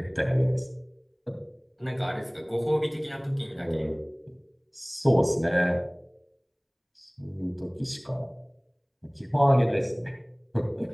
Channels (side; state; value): both; identical; correlation 1.00